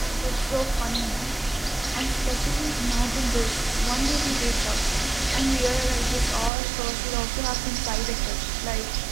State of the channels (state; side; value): drops out; left; at 6.5 s